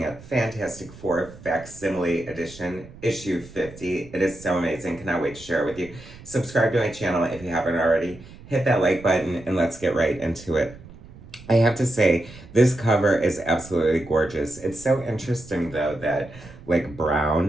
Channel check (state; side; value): noise; right; rumble, 19 dB below the sound